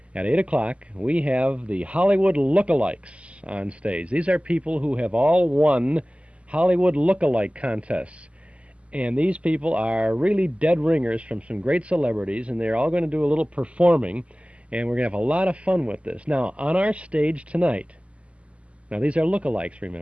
at 8 o'clock, we have the Hollywood Lookalikes on stage. These are people who have all won Hollywood Lookalike contests. And these people are really dead ringers from some great celebrities, and they're all going to do a little performing, and we're going to have a lot of fun with this. Now, on our stage tonight, now these are lookalikes,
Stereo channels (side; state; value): left; late; 0.060 ms